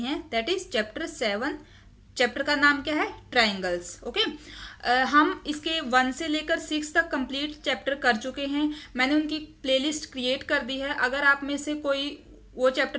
That is chapter 7। चैप्टर का नाम क्या है? ट्राइंगल्स। ओके। हम इसके 1 से लेकर 6 तक कंप्लीट चैप्टर कर चुके हैं। मैंने उनकी प्लेलिस्ट क्रिएट कर दी है। अगर आप में से कोई वो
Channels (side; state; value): both; identical; correlation 1.00